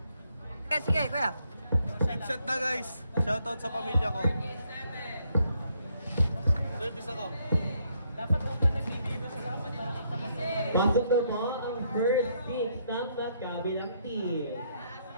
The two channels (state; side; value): inverted; both; correlation -0.72